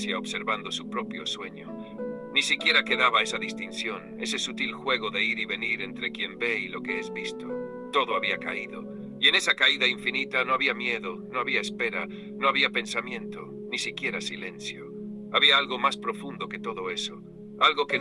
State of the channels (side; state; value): both; identical; correlation 1.00